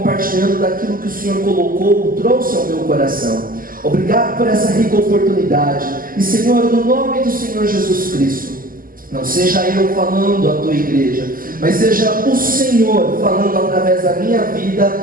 daquilo que o Senhor colocou, trouxe ao meu coração. Obrigado por essa rica oportunidade. E Senhor, no nome do Senhor Jesus Cristo, não seja eu falando à tua igreja, mas seja o Senhor falando através da minha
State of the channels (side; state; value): left; late; 0.41 ms